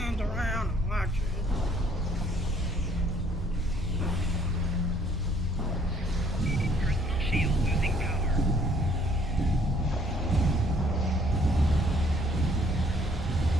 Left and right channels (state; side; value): normal; both; correlation 0.62